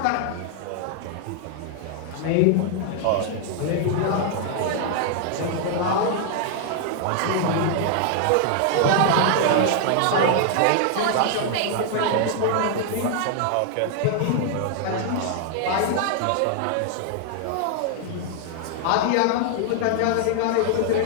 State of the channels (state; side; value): different; both; correlation 0.00